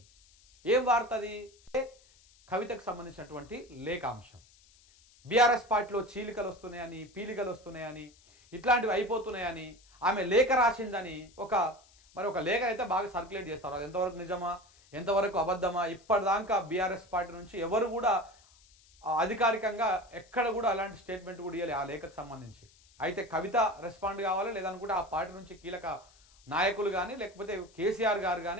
ఏం వార్త అది? కవితకు సంబంధించినటువంటి లేఖాంశం. బీఆర్ఎస్ పార్టీలో చీలికలు వస్తున్నాయని, పీలికలు వస్తున్నాయని, ఇట్లాంటివి అయిపోతున్నాయని, ఆమె లేఖ రాసిందని ఒక లేఖ అయితే బాగా సర్క్యులేట్ చేస్తారు. అది ఎంతవరకు నిజమా, ఎంతవరకు అబద్ధమా, ఇప్పటిదాకా బీఆర్ఎస్ పార్టీ నుంచి ఎవరు కూడా అధికారికంగా ఎక్కడ కూడా అలాంటి స్టేట్మెంట్ కూడా ఇవ్వాలి ఆ లేఖకు సంబంధించి. అయితే కవిత రెస్పాండ్ కావాలి, లేదనుకుంటే ఆ పార్టీ నుంచి కీలక నాయకులు కానీ లేకపోతే కేసీఆర్ గారు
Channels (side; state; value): left; noise; hiss, 28 dB below the sound